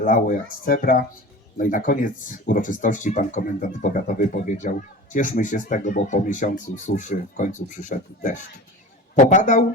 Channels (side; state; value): both; normal; correlation 0.35